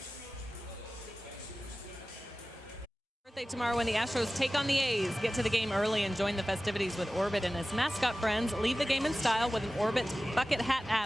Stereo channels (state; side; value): normal; both; correlation 0.96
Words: Birthday tomorrow when the Astros take on the A's. Get to the game early and join the festivities with Orbit and his mascot friends. Leave the game in style with an Orbit bucket hat